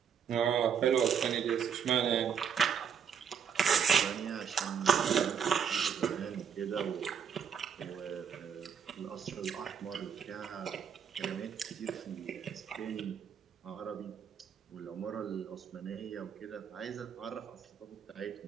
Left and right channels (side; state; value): left; quieter; 7.4 dB